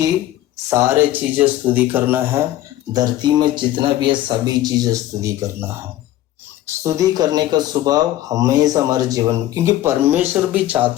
सारे चीजें स्तुति करना है, धरती में जितना भी है सभी चीजें स्तुति करना है। स्तुति करने का स्वभाव हमेशा हमारे जीवन में, क्योंकि परमेश्वर भी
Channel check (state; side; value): quieter; right; 14.0 dB